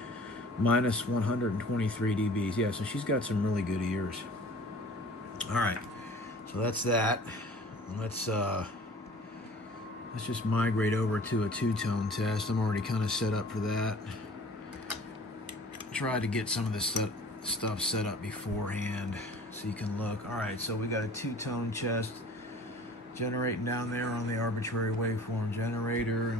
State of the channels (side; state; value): both; normal; correlation 0.47